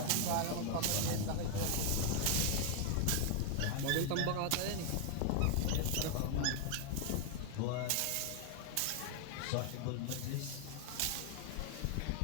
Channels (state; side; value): different; both; correlation 0.00